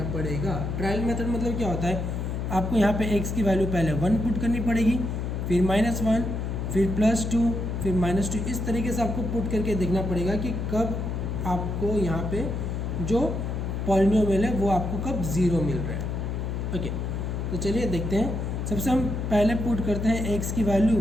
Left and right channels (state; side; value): noise; left; hum, 2 dB below the sound